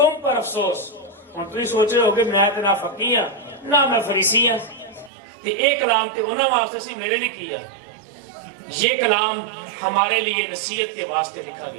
پر افسوس۔ ہوں تم سوچ رہے ہو کہ میں تو نہ فقی ہاں نہ میں فریسی ہاں، ایک کلام تو انہوں واسطے سی میرے لیے کیا، یہ کلام ہمارے لیے نصیحت کے واسطے لکھا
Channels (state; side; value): drops out; left; at 5.1 s